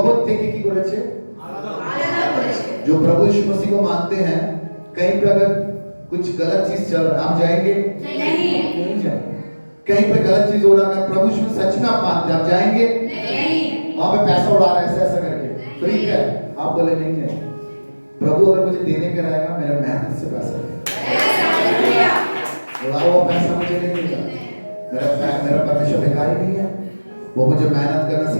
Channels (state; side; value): inverted; both; correlation -1.00